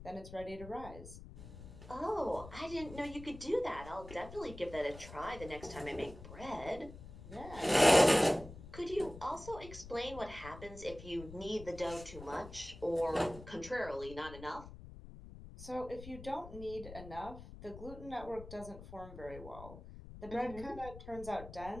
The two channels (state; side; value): noise; left; rumble, 14 dB below the sound